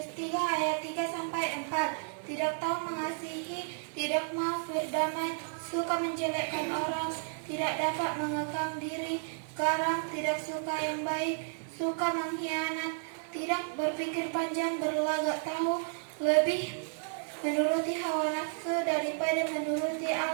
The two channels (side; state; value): left; silent; digital silence